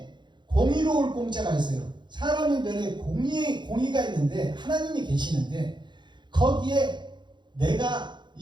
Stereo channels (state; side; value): late; left; 0.22 ms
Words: 공의로울 공자가 있어요. 사람인 변에 공의가 있는데 하나님이 계시는데 거기에 내가